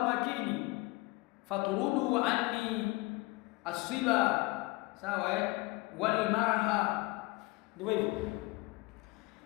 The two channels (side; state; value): right; quieter; 22.9 dB